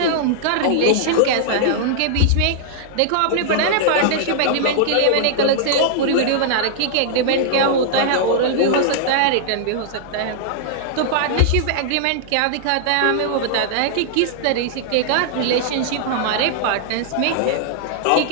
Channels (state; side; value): different; both; correlation -0.01